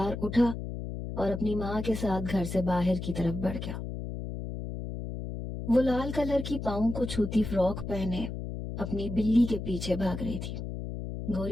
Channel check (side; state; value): left; noise; hum, 6 dB below the sound